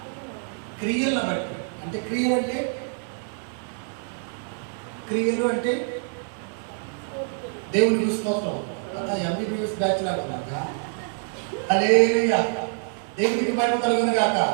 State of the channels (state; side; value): silent; left; 56 dB below the other